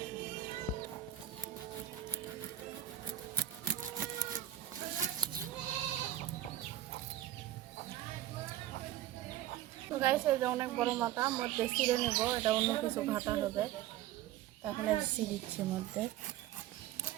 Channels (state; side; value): quieter; left; 12.9 dB